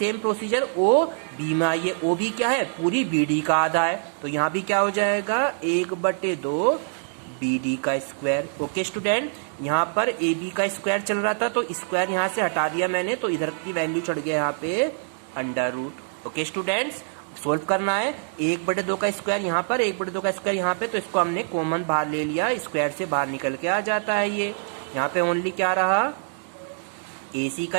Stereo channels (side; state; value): left; silent; digital silence